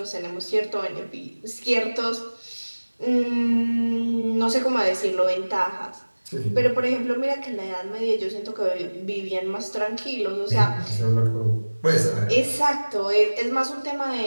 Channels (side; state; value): both; inverted; correlation -1.00